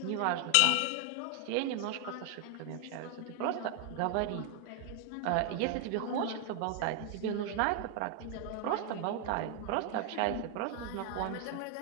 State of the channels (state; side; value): different; both; correlation 0.00